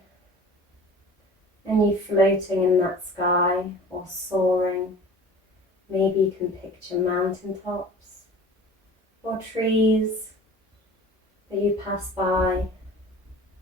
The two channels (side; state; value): both; normal; correlation 0.41